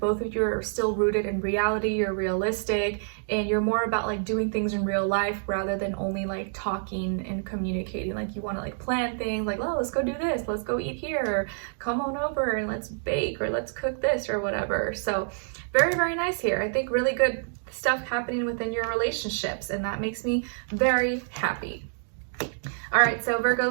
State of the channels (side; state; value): left; silent; digital silence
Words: of you are still rooted in reality, you're realistic, and you're more about like doing things in real life rather than only like talking and communicating. Like you want to like plan things like, oh, let's go do this, let's go eat here, or come on over and let's bake, or let's cook this, or whatever. So very, very nice here. I think really good stuff happening within your relationships, and that makes me very happy. All right, so